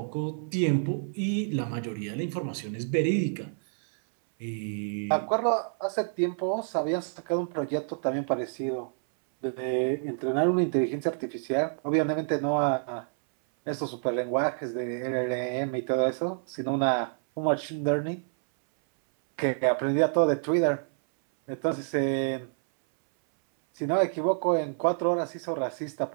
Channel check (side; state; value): left; silent; 59 dB below the other